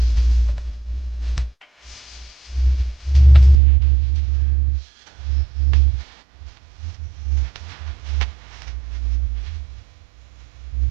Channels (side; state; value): left; drops out; at 3.6 s